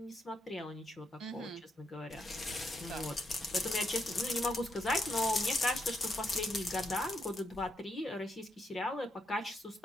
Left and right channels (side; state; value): both; normal; correlation 0.79